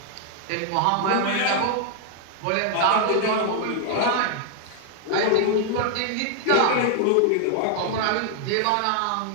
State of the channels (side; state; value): both; different; correlation 0.00